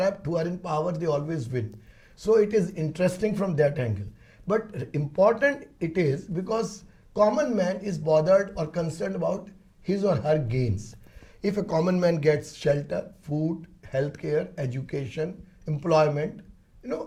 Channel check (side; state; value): both; identical; correlation 1.00